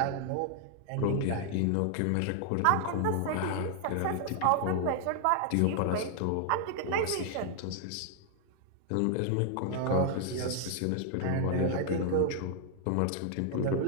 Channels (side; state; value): both; different; correlation 0.00